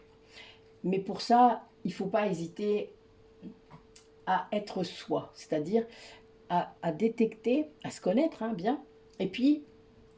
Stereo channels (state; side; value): identical; both; correlation 1.00